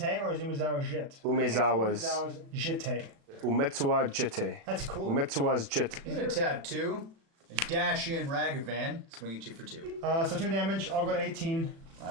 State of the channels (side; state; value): left; late; 36 ms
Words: or is Umezawa Jit? Umezawa's. Umezawa's Jite. Umetsuwa jite. That's cool. Umetsuwa's jite. You're gonna tap 2, and dash in Ragavan, swing at you for 2. So 2 damage. I'll go to 18.